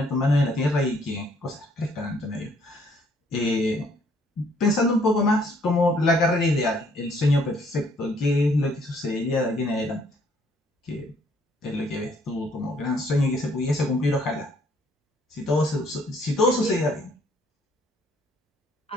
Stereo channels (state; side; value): normal; both; correlation 0.65